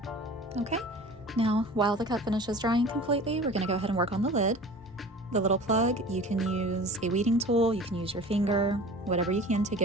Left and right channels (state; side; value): normal; both; correlation 0.40